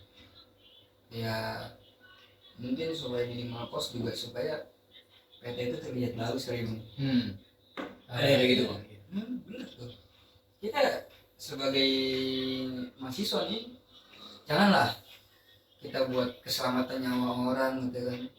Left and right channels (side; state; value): both; identical; correlation 1.00